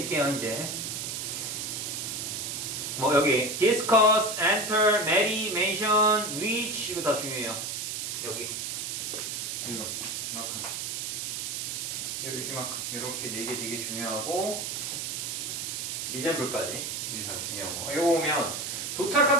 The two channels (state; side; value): noise; right; hiss, 3 dB below the sound